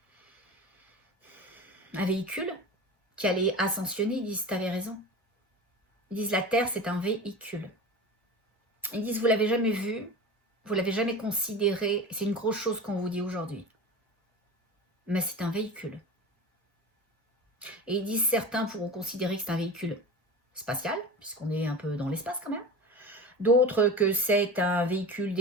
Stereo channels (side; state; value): both; normal; correlation 0.32